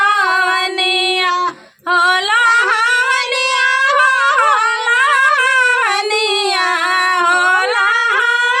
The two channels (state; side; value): identical; both; correlation 1.00